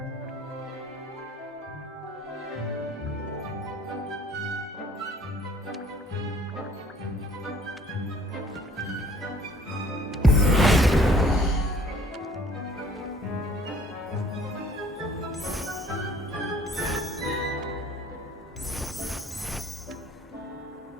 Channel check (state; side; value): normal; both; correlation 0.56